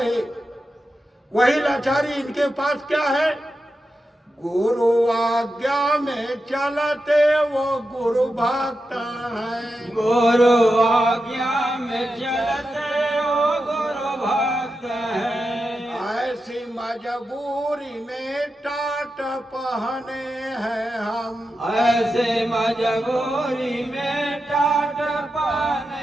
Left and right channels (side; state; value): both; normal; correlation 0.90